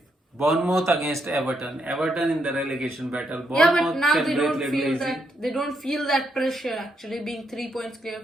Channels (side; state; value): both; normal; correlation 0.78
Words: Bournemouth against Everton. Everton in the relegation battle. Yeah, but now they don't feel that pressure actually, being 3 points clear